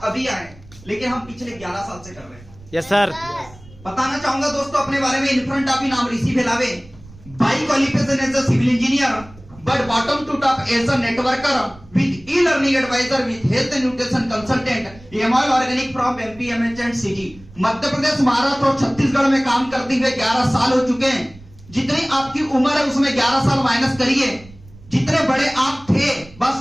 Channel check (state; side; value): noise; right; rumble, 22 dB below the sound